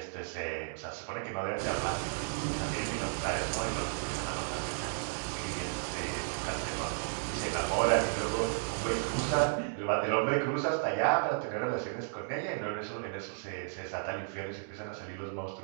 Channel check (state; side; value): silent; left; digital silence